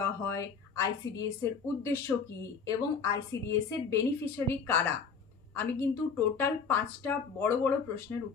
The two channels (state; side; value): quieter; right; 5.7 dB